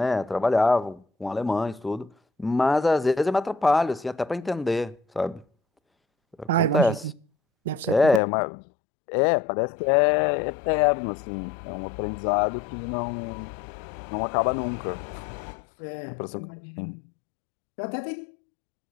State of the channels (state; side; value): drops out; right; at 8.2 s